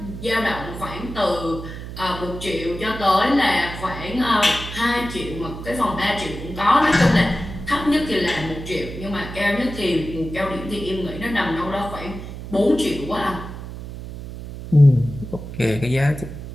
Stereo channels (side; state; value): right; noise; hum, 10 dB below the sound